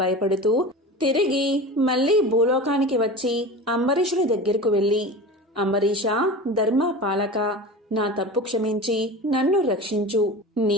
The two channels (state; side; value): normal; both; correlation 0.31